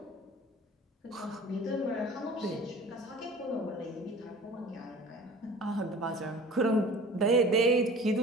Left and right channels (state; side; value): normal; both; correlation 0.43